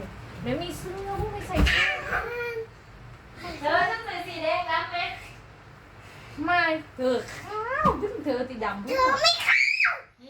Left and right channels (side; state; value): both; identical; correlation 1.00